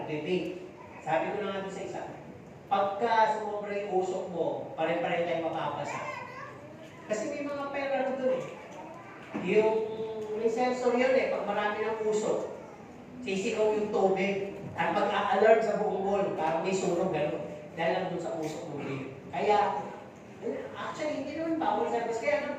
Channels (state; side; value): identical; both; correlation 1.00